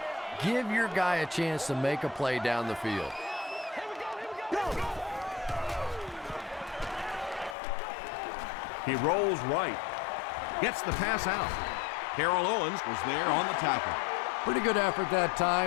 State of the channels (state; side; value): drops out; right; at 7.6 s